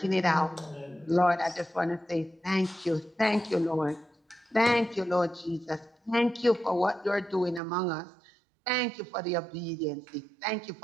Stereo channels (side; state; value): left; drops out; at 7.6 s